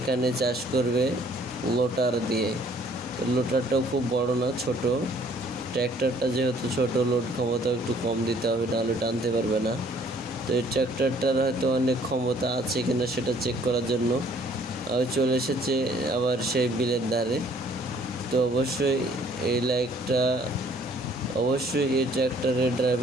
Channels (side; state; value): both; normal; correlation 0.59